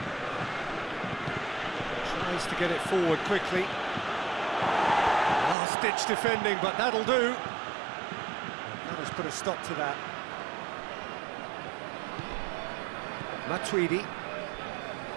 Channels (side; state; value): left; drops out; at 5.6 s